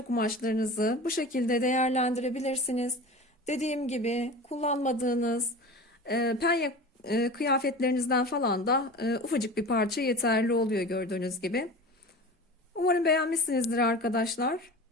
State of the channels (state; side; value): normal; both; correlation 0.34